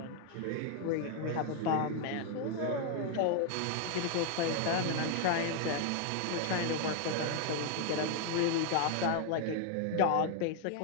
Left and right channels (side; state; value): both; different; correlation 0.01